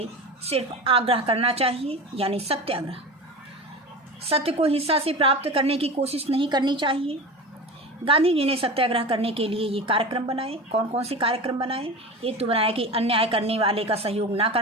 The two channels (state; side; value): normal; both; correlation 0.29